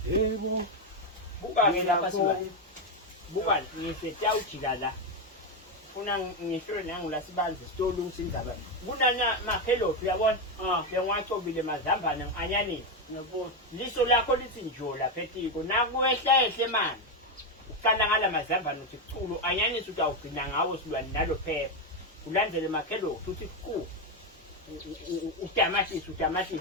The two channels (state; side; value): normal; both; correlation 0.08